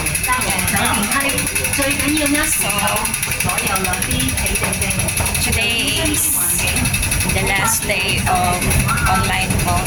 So, today is the last day of online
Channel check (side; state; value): both; identical; correlation 1.00